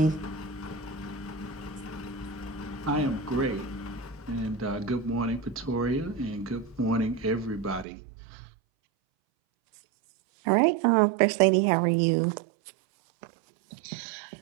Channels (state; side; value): drops out; left; at 7.9 s